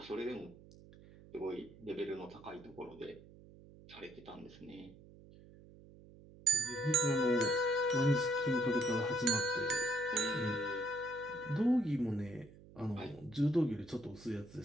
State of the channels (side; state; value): right; noise; hum, 21 dB below the sound